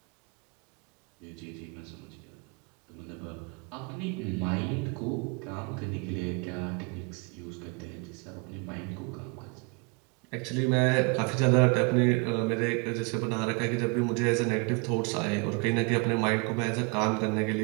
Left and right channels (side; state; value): left; quieter; 30.7 dB